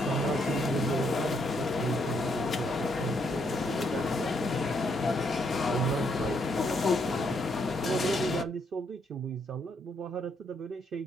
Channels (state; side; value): normal; both; correlation 0.74